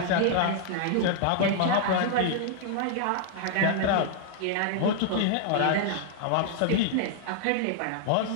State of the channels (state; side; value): different; both; correlation 0.00